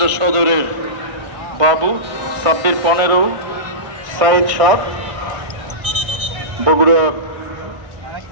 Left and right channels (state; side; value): late; left; 1.6 ms